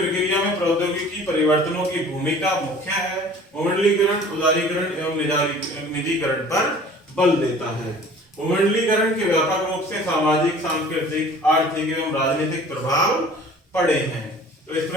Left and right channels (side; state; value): both; normal; correlation 0.47